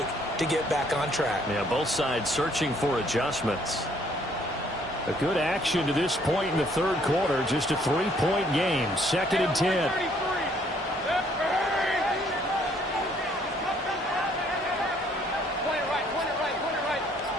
to get back on track? Yeah, both sides searching for adjustments. A good action to this point in the 3rd quarter. Just a 3-point game. 2nd and 10.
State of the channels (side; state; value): both; normal; correlation 0.64